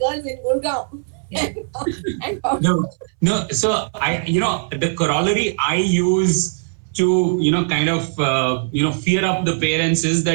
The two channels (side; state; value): left; silent; 64 dB below the other